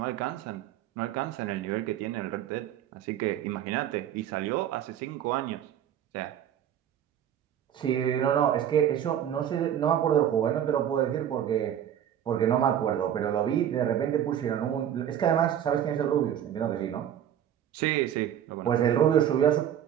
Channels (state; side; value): quieter; left; 10.1 dB